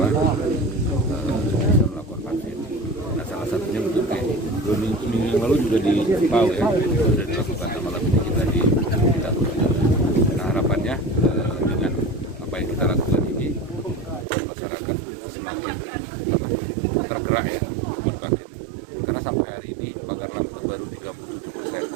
bisa melakukan vaksin. Nah, salah satunya bentuk kayak minggu yang lalu juga di Pau ya, sudah dilakukan. Malam ini kita di kita. Nah, harapannya dengan apa yang kita lakukan ini, masyarakat semakin tergerak ya untuk vaksin. Karena sampai hari ini Pagarlang itu baru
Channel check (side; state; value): left; drops out; at 14.2 s